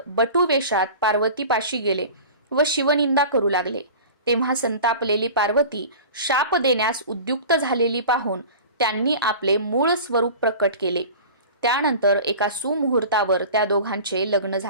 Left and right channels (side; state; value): both; inverted; correlation -0.38